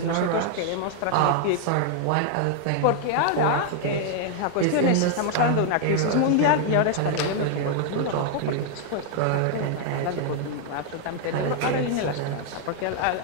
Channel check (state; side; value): different; both; correlation 0.00